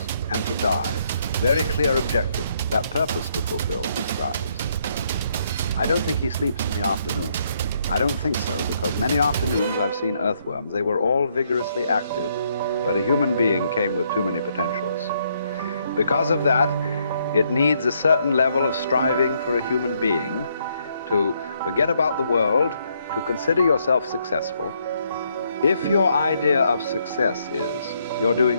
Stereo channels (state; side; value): inverted; both; correlation -0.72